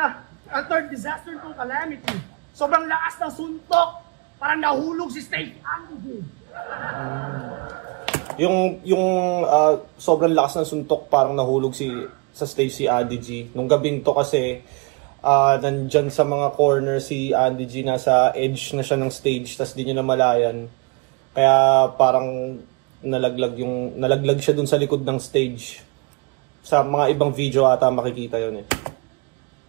A third disaster to calamity. Sobrang lakas ng suntok. Parang nahulog si Stacey Adige. Yung sobrang lakas ng suntok parang nahulog sa Stacey Adige. Nung gabing to kasi nandyan sa mga corner si Adige, nasa edge na siya ng stage, tas di niya namalayan. Kaya parang nalaglag siya dun sa likod ng stage. Sa mga ibang video ata makikita yun eh.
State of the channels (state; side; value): quieter; left; 30.8 dB